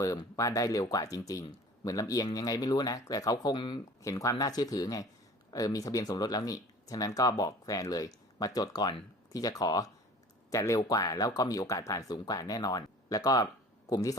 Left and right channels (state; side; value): normal; both; correlation 0.44